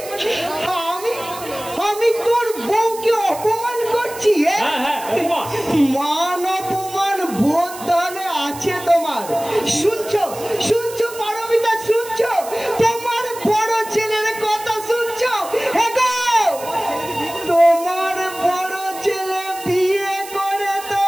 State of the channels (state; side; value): noise; right; hiss, 14 dB below the sound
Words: আমি তোর বউকে অপমান করছি? হ্যাঁ হ্যাঁ, অপমান। মান অপমান বোধ তাহলে আছে তোমার? শুনছো শুনছো পারমিতা, শুনছো? তোমার বড় ছেলের কথা শুনছো? এগো, তোমার বড় ছেলে বিয়ে করে তো